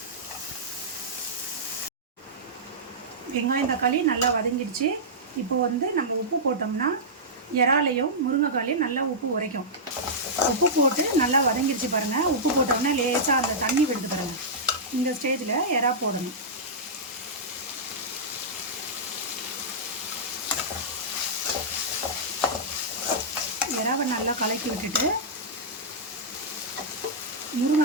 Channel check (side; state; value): both; normal; correlation -0.12